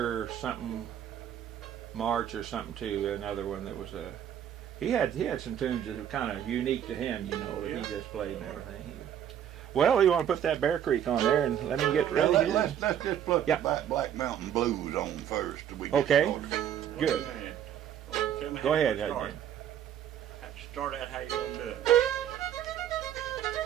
something March or something too. Another one that was a. He had some tunes that were kind of unique to him, that he just played and everything. Well, you want to put that Bear Creek on there and let me get ready here? Let's just put Yeah. the Black Mountain Blues on first. Okay. Good. Tell me Go how ahead. you start out how you gonna do it.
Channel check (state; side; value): quieter; left; 9.8 dB